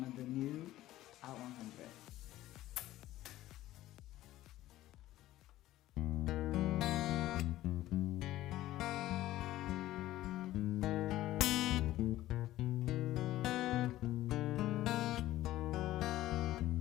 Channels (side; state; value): right; quieter; 15.1 dB